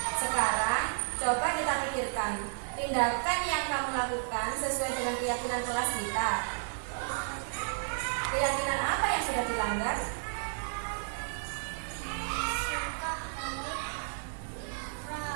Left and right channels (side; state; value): left; silent; digital silence